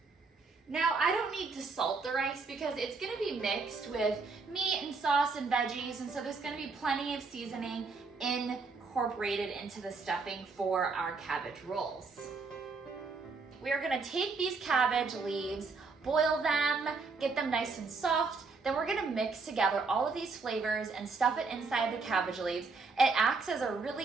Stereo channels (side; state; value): left; quieter; 4.3 dB